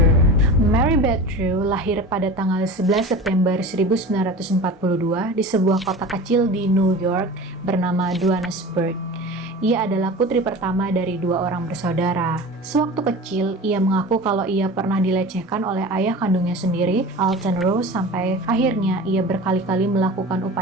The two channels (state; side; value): normal; both; correlation 0.34